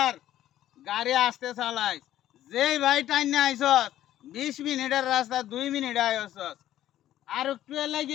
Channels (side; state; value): right; quieter; 12.8 dB